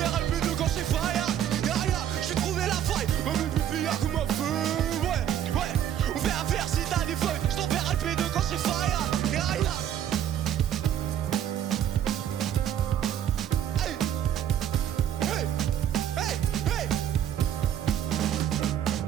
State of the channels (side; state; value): left; quieter; 10.2 dB